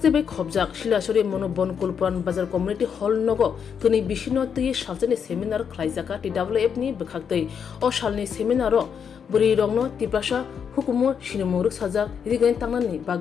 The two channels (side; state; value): right; quieter; 7.2 dB